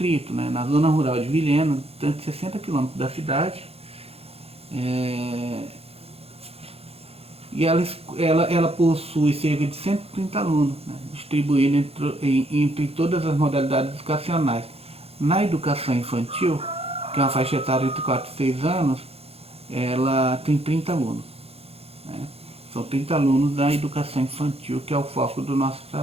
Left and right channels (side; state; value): left; late; 0.29 ms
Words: né, na zona rural de Vilhena, distante de 60 quilômetros da cidade. E ela possui cerca de 130 alunos, né, distribuídos entre todas as modalidades educacionais. Na educação infantil, que é uma faixa etária entre 4 e 6 anos, ela tem 30 alunos. Né? São 30 alunos da educação infantil, que é o foco do nosso